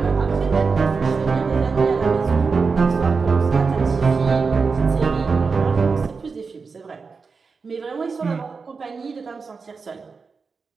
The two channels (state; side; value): quieter; left; 4.9 dB